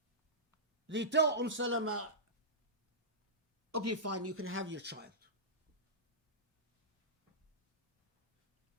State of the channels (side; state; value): both; normal; correlation -0.17